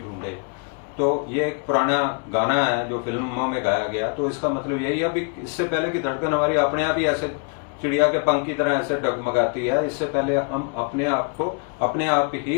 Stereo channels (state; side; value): quieter; right; 37.2 dB